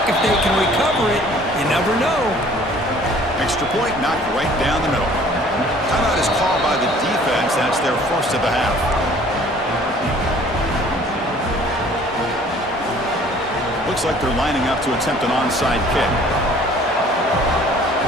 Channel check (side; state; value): both; normal; correlation 0.53